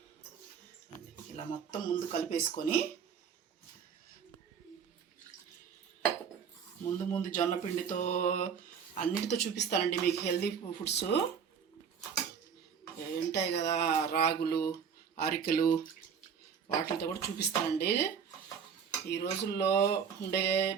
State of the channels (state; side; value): quieter; left; 7.0 dB